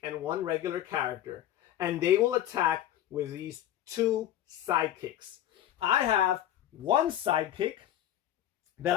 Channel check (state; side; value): quieter; right; 12.1 dB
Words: and 1 regular character. And they will attack with these 2 sidekicks. I have 1 sidekick